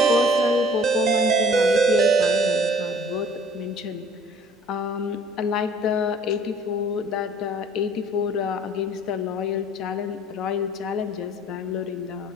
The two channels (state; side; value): normal; both; correlation 0.52